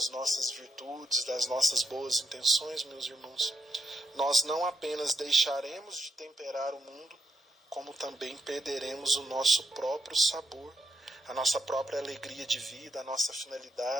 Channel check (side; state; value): both; normal; correlation 0.83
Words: nossas virtudes, das nossas boas intenções, meus irmãos, nós não apenas deixaremos de temperar o mundo, como também perderemos o nosso próprio sabor, a nossa própria alegria de vida, a nossa